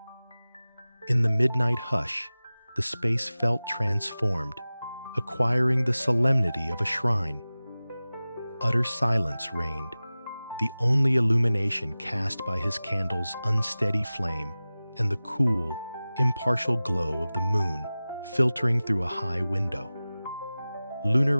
In the midnight hush, the space felt transformed, acquiring the solemnity of a shrine. Utter silence reigned, the only illumination cast by his candle's unsteady flame and the cool, impartial glow of the moon filtering through a high window. Lunar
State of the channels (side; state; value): both; inverted; correlation -0.97